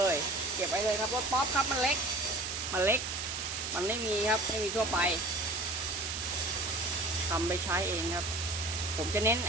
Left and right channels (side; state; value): right; noise; hiss, 4 dB below the sound